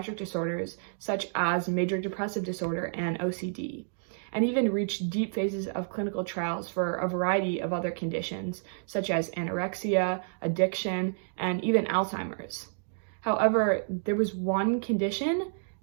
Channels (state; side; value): silent; left; digital silence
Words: disorders such as major depressive disorder and OCD, and even reached deep phases of clinical trials for a variety of other conditions such as anorexia, addiction, and even Alzheimer's. However, there was one condition